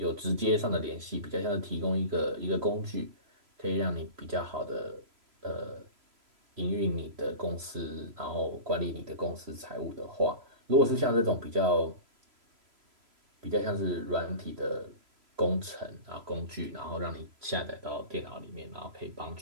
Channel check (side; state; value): left; late; 3.0 ms